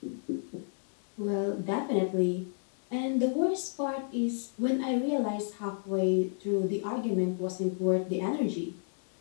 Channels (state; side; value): silent; right; digital silence